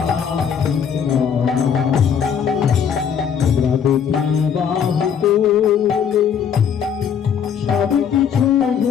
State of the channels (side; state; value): right; quieter; 7.6 dB